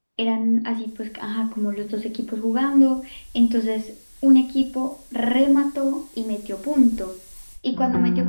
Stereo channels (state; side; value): inverted; both; correlation -1.00